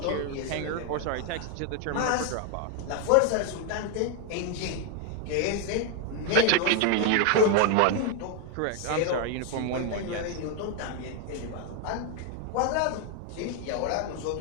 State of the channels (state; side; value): different; both; correlation 0.00